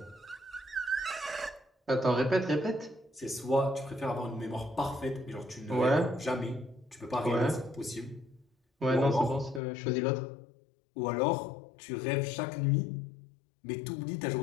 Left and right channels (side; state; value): right; drops out; at 9.6 s